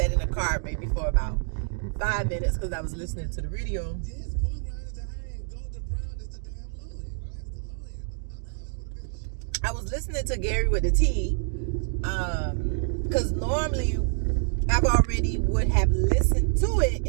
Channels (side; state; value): left; silent; 57 dB below the other